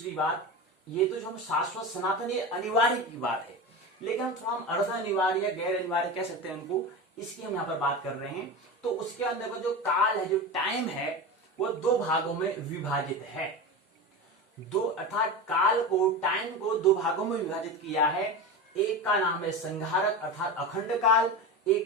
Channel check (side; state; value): both; normal; correlation 0.24